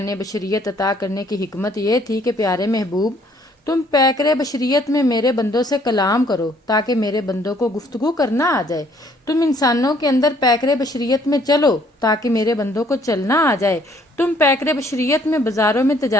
بشریت عطا کرنے کی حکمت یہ تھی کہ پیارے محبوب تم پیکر بشریت میں میرے بندوں سے کلام کرو تاکہ میرے بندوں کو گفتگو کرنا آ جائے۔ تم انسانوں کے اندر پیکر بشریت میں چلو تاکہ میرے بندوں کو چلنا آ جائے۔ تم پیکر بشریت میں بازاروں میں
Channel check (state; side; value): normal; both; correlation 0.63